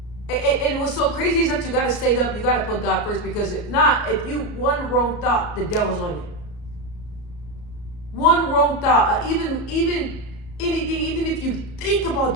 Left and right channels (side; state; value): right; late; 34 ms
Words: And what's so crazy is that you got to stay up, you got to put God first, because if not, if you one wrong thought, the devil's on it. One wrong thought, even anything, even if you think about